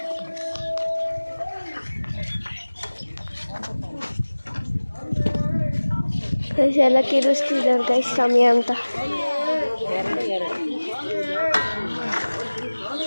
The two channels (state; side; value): inverted; both; correlation -1.00